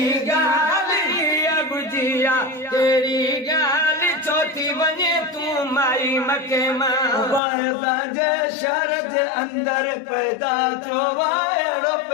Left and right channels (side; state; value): right; drops out; at 7.4 s